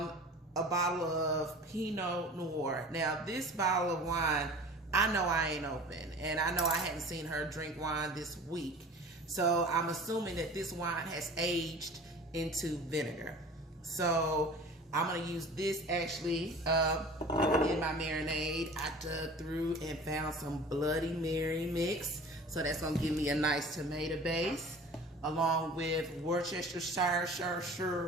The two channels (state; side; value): normal; both; correlation 0.42